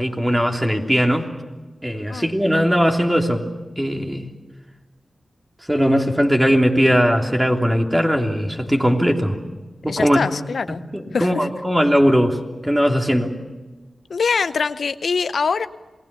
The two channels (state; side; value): normal; both; correlation 0.96